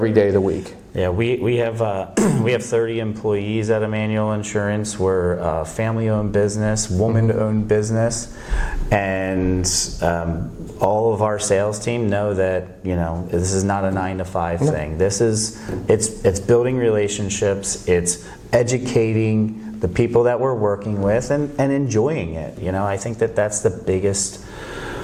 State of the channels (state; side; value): identical; both; correlation 1.00